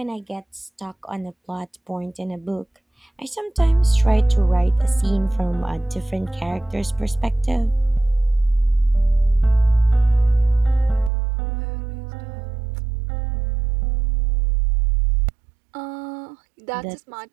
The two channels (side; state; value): left; drops out; at 11.1 s